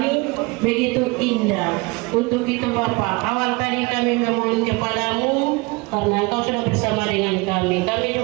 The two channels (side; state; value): left; quieter; 26.1 dB